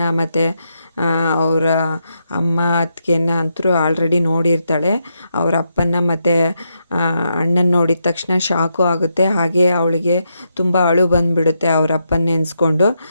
ಮತ್ತು ಅವರ ಅಮ್ಮ ಅತ್ತಿಗೆನ ಅಂತೂ ಆಲ್ರೆಡಿ ನೋಡಿರ್ತಾಳೆ. ಅವರ ಅಪ್ಪನ ಮತ್ತು ಅಣ್ಣನ ನೋಡಿದ ತಕ್ಷಣ ಶಾಕು ಆಗುತ್ತೆ. ಹಾಗೆ ಅವಳಿಗೆ ತುಂಬ ಅಳು ಬಂದುಬಿಡುತ್ತೆ. ಅವ್ರ ಅಪ್ಪನ ನೆನೆಸ್ಕೊಂಡು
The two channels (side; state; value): both; inverted; correlation -0.82